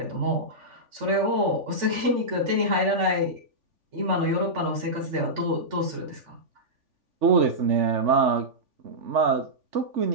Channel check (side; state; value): left; late; 3.5 ms